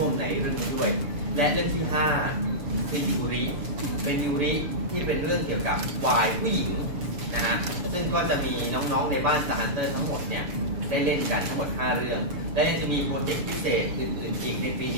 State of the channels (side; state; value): left; late; 6.9 ms